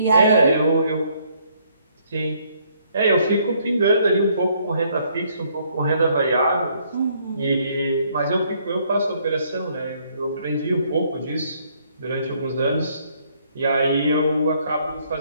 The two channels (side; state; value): both; inverted; correlation -0.67